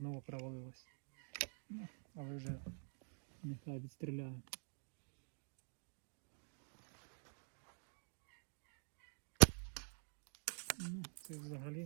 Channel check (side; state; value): left; silent; digital silence